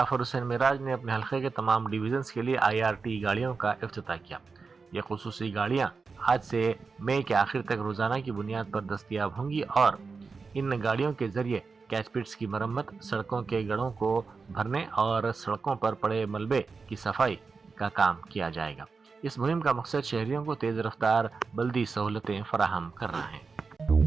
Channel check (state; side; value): quieter; left; 4.7 dB